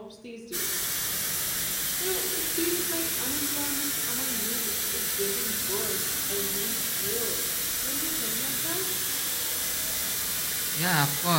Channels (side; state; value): both; identical; correlation 1.00